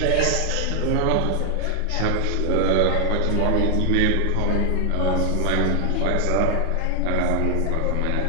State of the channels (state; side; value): different; both; correlation 0.00